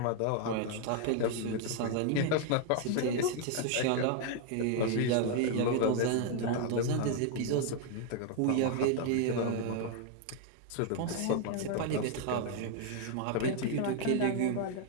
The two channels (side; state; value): both; different; correlation 0.00